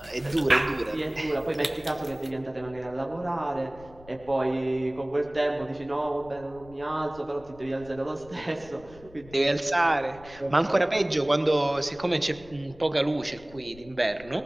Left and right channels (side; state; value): left; noise; rumble, 21 dB below the sound